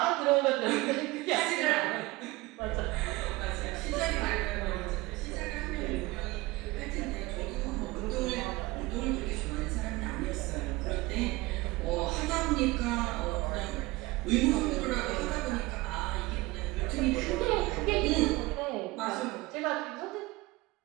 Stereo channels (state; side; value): quieter; left; 21.2 dB